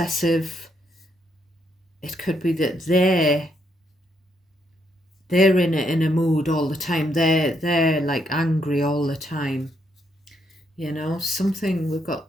it could be that they're in a mood all the time. They're like angry all the time. You know, something we've got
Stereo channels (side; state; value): both; normal; correlation 0.76